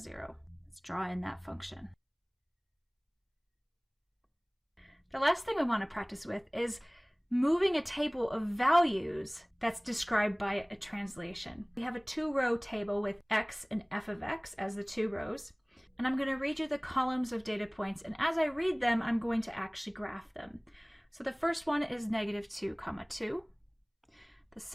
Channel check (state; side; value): identical; both; correlation 1.00